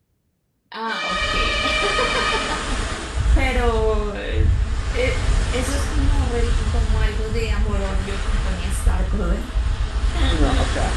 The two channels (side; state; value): both; identical; correlation 1.00